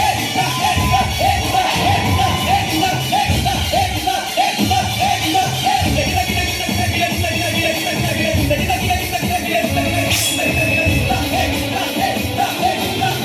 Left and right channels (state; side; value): identical; both; correlation 1.00